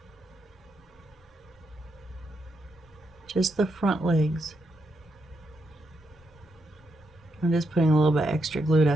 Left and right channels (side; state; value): both; normal; correlation 0.81